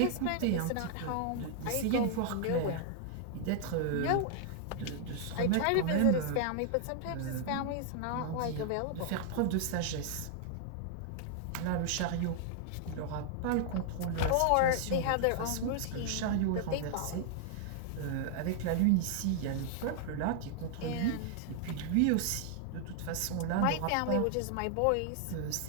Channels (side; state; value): both; different; correlation 0.00